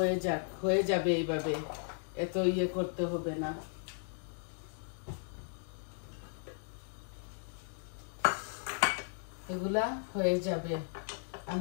হয়ে যাবে এইভাবে, এত ইয়ে করতে হবে না। এগুলা হয়ে যাবে,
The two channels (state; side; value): silent; right; digital silence